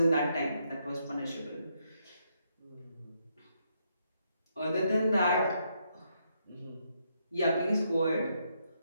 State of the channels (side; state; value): both; inverted; correlation -0.77